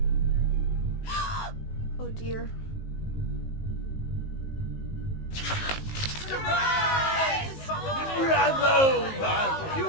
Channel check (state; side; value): late; right; 19 ms